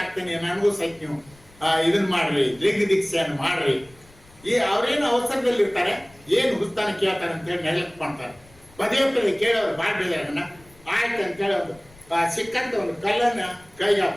ಆಗ್ತೇನೆ, ನನಗೂ ಸಹಿತ ನೀವು ಇದನ್ನ ಮಾಡ್ರಿ, ಲಿಂಗ ದೀಕ್ಷೆಯನ್ನು ಮಾಡ್ರಿ. ಈ ಅವ್ರೇನು ಅವಸರದಲ್ಲಿ ಇರ್ತಾರೆ, ಏನು ಹುಸ್ತಾನ ಕೇಳ್ತಾರೆ ಅಂತೇಳಿ ನೆಲಕ್ಕೆ ಮಾಡ್ತಾರೆ. ಪದೇ ಪದೇ ಕೇಳೋರು ಮಾಡ್ಬೇಕನ್ನ ಆಯ್ತು ಅಂತ ಹೇಳೋದು ಸಿಕ್ಕಂತ ಒಂದು ಕಲ್ಲನ್ನ ಕೈಗೆ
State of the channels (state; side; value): noise; left; rumble, 26 dB below the sound